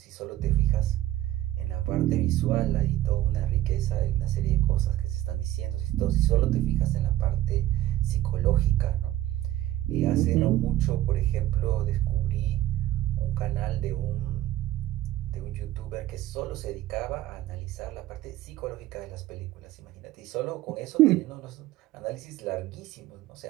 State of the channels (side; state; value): left; quieter; 14.5 dB